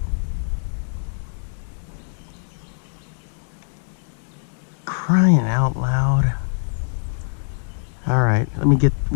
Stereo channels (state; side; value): silent; right; digital silence